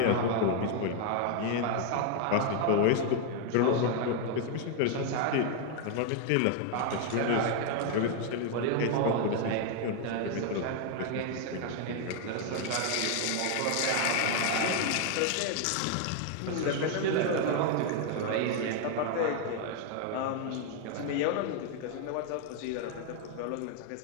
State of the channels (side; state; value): both; different; correlation 0.00